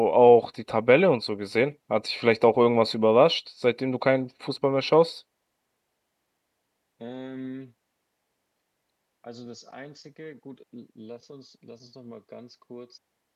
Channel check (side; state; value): both; identical; correlation 1.00